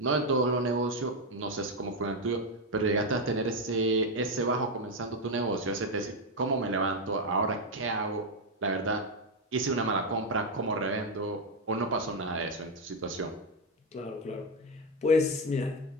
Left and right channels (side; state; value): both; normal; correlation 0.06